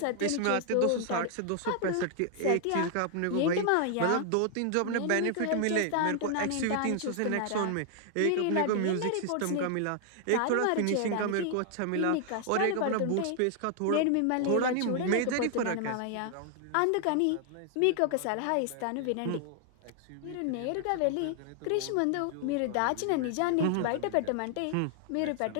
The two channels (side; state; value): both; different; correlation 0.00